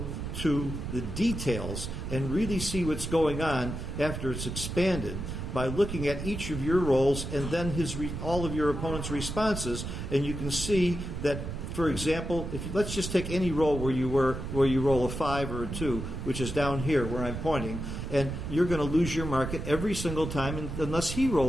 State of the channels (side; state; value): right; noise; rumble, 6 dB below the sound